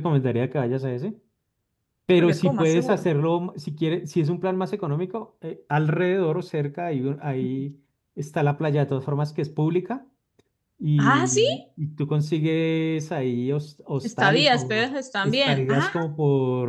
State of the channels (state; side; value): identical; both; correlation 1.00